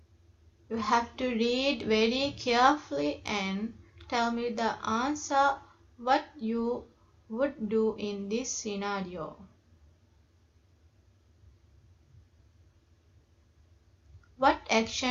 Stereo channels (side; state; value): both; identical; correlation 1.00